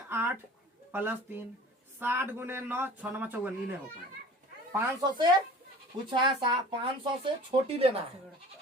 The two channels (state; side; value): normal; both; correlation 0.43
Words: 8 प्लस 3, 60 गुने 9, 6 9 54, नहीं हो पाएगा। 500 से पूछा है, 500 से छोटी लेना है,